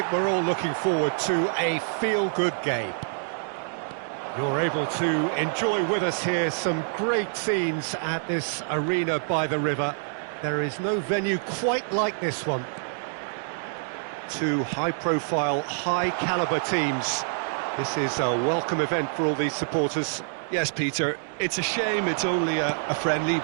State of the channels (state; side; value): silent; left; digital silence